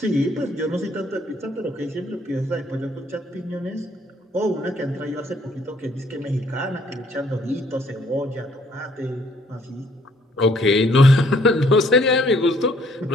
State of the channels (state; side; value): normal; both; correlation 0.64